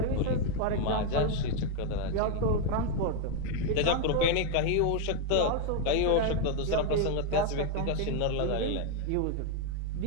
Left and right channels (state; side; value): different; both; correlation 0.01